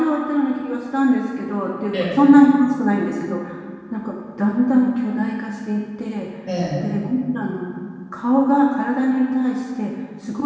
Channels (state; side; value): identical; both; correlation 1.00